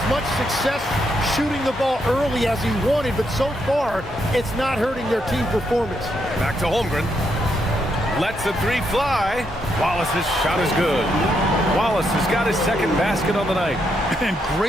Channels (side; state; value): both; normal; correlation 0.78